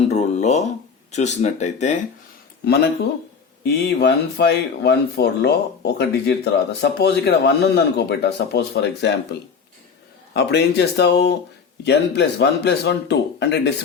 రూల్లో చూసినట్టయితే మనకు ఈ 1514లో ఒక డిజిట్ తర్వాత సపోజ్ ఇక్కడ 1 ఉందనుకో బెటా, సపోజ్ ఫర్ ఎగ్జాంపుల్, అప్పుడు ఏం చేస్తావు? n+1 +1 2 అంటే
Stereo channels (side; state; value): right; quieter; 5.9 dB